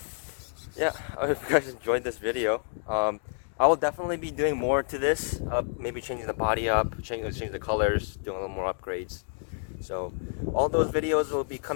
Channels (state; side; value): silent; right; 59 dB below the other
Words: yeah, I hope you guys enjoyed this video. I will definitely be doing more to this, maybe changing the body up, change the colors, doing a little more upgrades. So all those videos will be